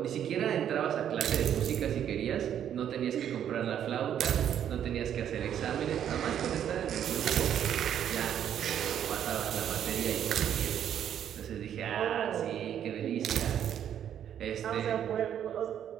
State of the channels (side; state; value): left; quieter; 9.7 dB